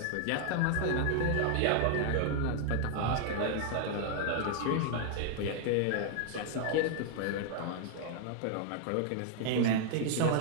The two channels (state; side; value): different; both; correlation 0.00